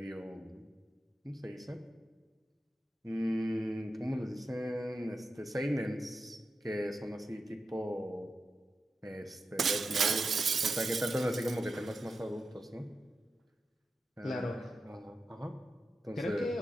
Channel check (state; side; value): normal; both; correlation 0.90